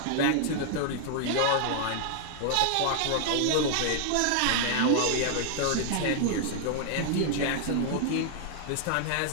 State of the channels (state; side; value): different; both; correlation 0.00